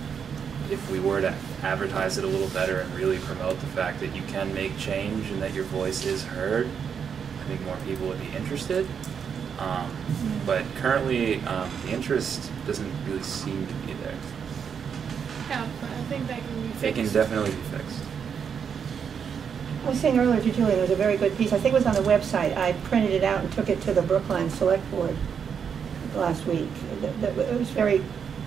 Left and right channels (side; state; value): left; quieter; 7.1 dB